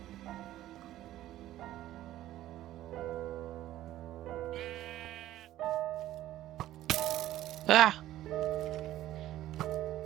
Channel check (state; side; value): quieter; left; 14.0 dB